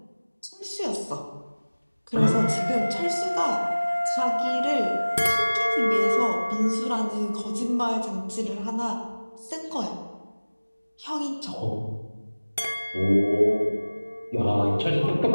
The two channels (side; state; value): both; inverted; correlation -1.00